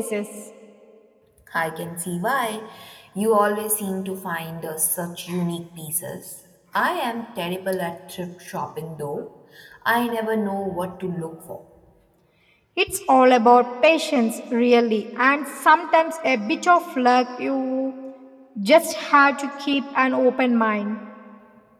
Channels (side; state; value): both; identical; correlation 1.00